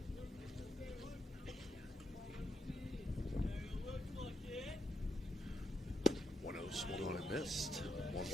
Swung on and missed.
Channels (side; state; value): both; normal; correlation 0.80